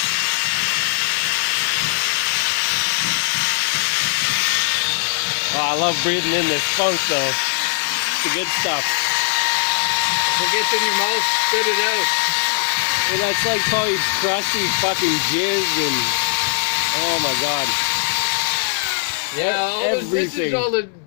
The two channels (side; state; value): right; silent; digital silence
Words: Oh, I love breathing in this funk though. It's the good stuff. If it gets in your mouth, spit it out. And that's like probably crusty fucking jizz and oh my god. Yeah, this everything. is all the